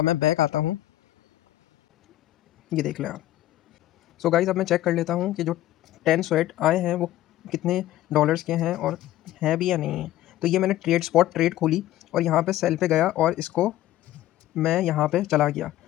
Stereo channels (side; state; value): right; quieter; 14.4 dB